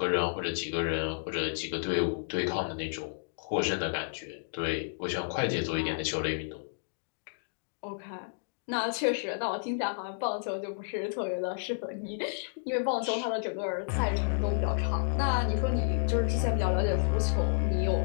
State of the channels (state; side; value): silent; right; digital silence